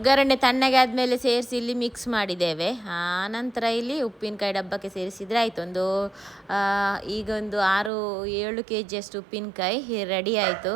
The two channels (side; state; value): left; drops out; at 7.9 s